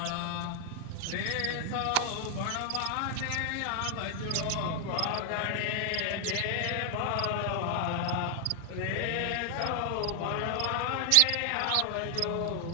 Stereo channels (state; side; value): different; both; correlation 0.00